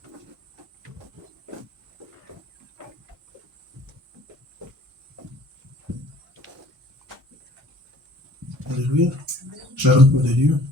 Alléluia. Shalom pour de Dieu.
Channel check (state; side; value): normal; both; correlation 0.52